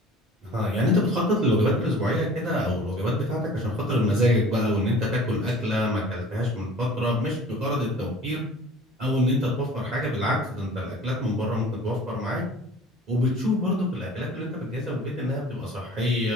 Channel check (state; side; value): normal; both; correlation 0.45